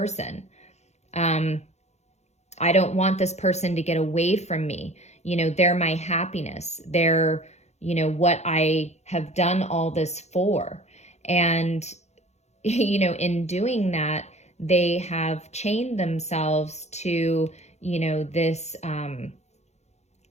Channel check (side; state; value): right; late; 0.32 ms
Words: I don't want this person to get away from me. They're my happiness. They're, what I have done all this for. And, in doing that, they have chained themselves to, this,